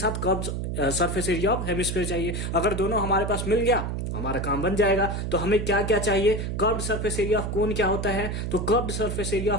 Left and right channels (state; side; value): noise; right; hum, 3 dB below the sound